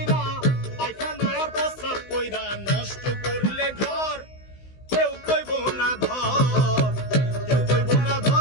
পায়খানা আর প্রস্রাব কইরা নষ্ট করলে ঘর, কেউ কইব না ধর। কেউ কইব না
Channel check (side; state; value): right; late; 16 ms